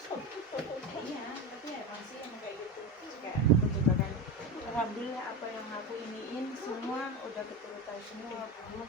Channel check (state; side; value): normal; both; correlation 0.20